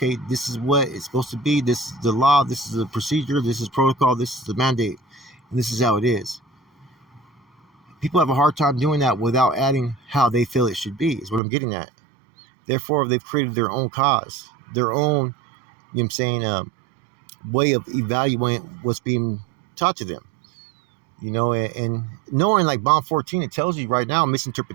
this is what it's supposed to be, this is the law, this is the procedure, this is protocol, this is the mandate, and this is how it is. People have a hard time doing that without adding how they feel it should be, is what I'm getting at. Therefore, they've created their own cause, their own, way of evaluating what's being taught to them. And knowing like bond 14, it tells you right now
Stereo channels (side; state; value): left; drops out; at 11.4 s